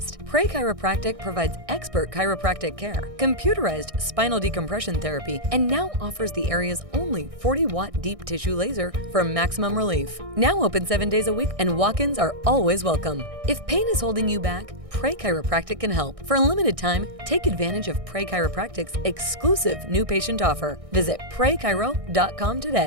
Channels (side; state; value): left; late; 1.6 ms